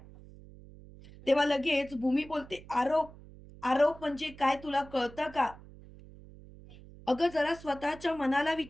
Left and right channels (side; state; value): right; noise; hum, 19 dB below the sound